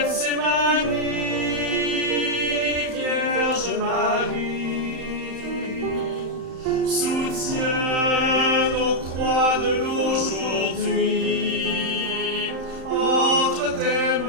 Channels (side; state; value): left; late; 31 ms